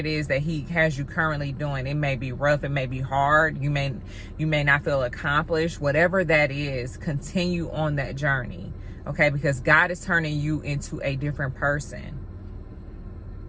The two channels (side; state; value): both; identical; correlation 1.00